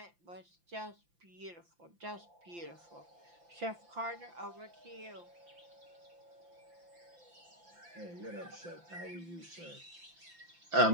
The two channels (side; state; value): left; late; 5.8 ms